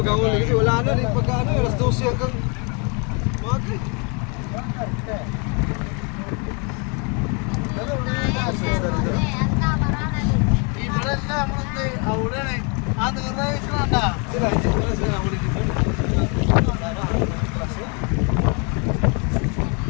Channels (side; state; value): right; quieter; 35.0 dB